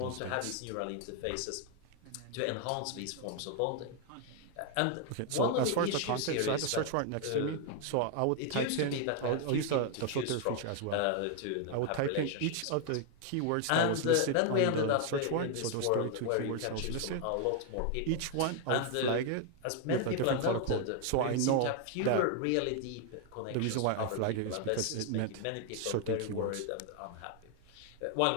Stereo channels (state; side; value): different; both; correlation 0.00